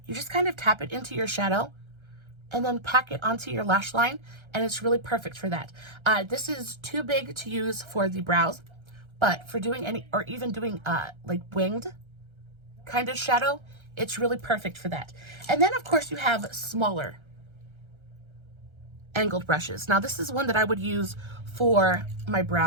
You just kind of tap it into your shadow and then pack it onto your lash line, and it's really perfect for that. This is too big to use for the brows, but for doing any, or even doing like winged kind of shadow, it's really perfect for that. And then of course you have smaller angled brushes. Now this is one that I would use for my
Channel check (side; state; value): left; late; 1.3 ms